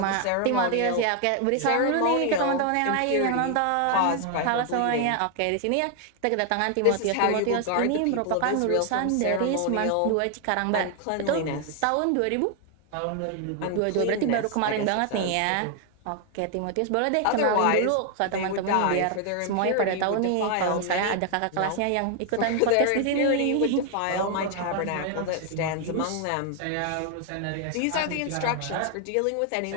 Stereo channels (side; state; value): both; different; correlation 0.00